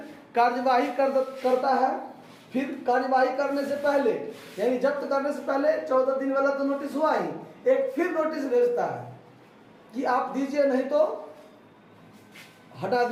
कार्यवाही करता है। फिर कार्यवाही करने से पहले, यानी जब्त करने से पहले 14 दिन वाला तो नोटिस हुआ ही, एक फिर नोटिस भेजता है कि आप दीजिए नहीं तो हटा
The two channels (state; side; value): identical; both; correlation 1.00